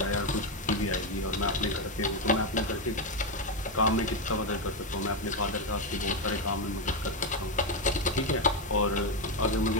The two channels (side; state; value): both; normal; correlation 0.07